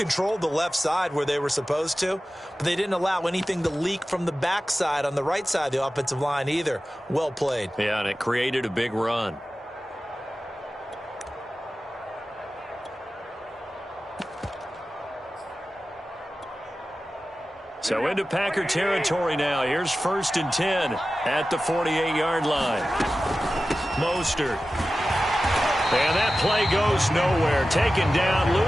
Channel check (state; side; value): normal; both; correlation 0.95